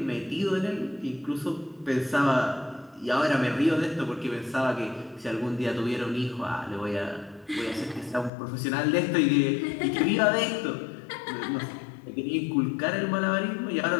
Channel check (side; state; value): right; drops out; at 8.3 s